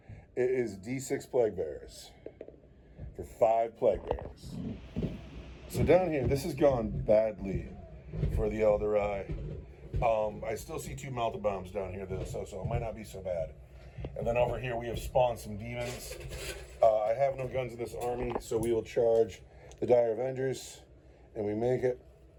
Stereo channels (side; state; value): both; identical; correlation 1.00